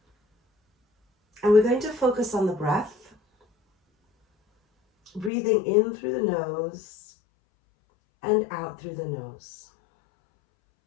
And we're going to focus on the breath. Breathing in through the nose and out through the nose.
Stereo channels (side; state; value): right; drops out; at 5.3 s